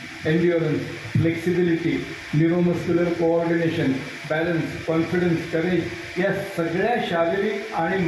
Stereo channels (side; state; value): both; identical; correlation 1.00